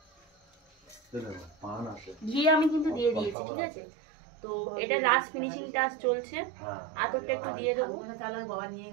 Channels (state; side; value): drops out; left; at 3.4 s